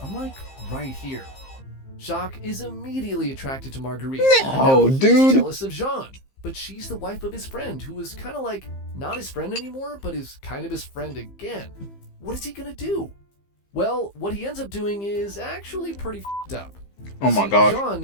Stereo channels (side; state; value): right; late; 15 ms